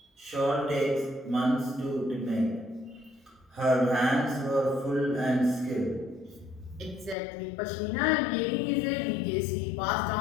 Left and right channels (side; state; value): right; drops out; at 7.2 s